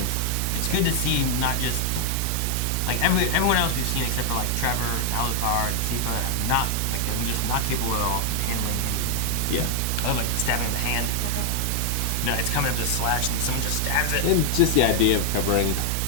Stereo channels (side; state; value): both; different; correlation 0.00